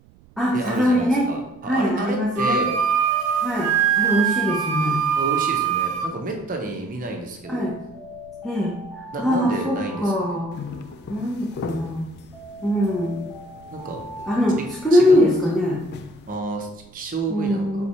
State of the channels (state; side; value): noise; right; rumble, 27 dB below the sound